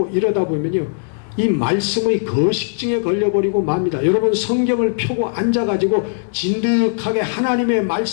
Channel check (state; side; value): silent; right; digital silence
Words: 이러다 보면요, 이 말씀의 거식증에 걸려버리고 맙니다. 여러분, 성경을 펴고 앉아가지고 진득하게 하나님의